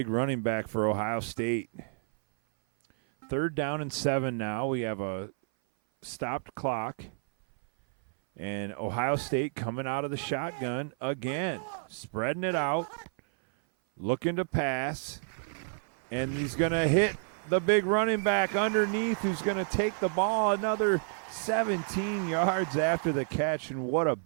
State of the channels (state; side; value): silent; left; 58 dB below the other